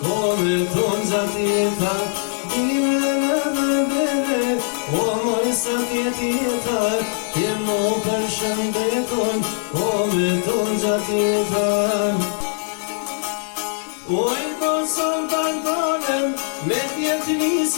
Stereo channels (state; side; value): silent; right; 65 dB below the other